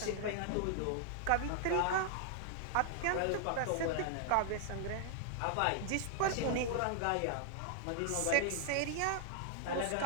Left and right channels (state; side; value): different; both; correlation -0.01